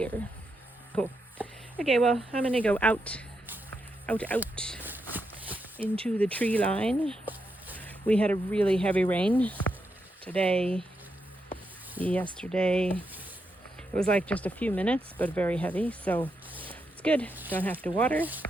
Cool. Okay, well, I'm gonna go out into the tree line. We had a really heavy rain today, yesterday. It was like just a few minutes, but very heavy, so it's good. Don't have to water,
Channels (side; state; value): both; normal; correlation 0.83